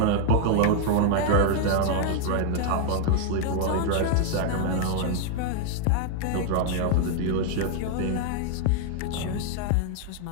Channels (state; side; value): different; both; correlation 0.00